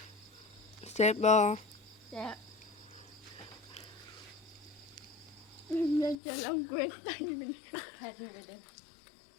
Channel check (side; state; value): right; drops out; at 6.2 s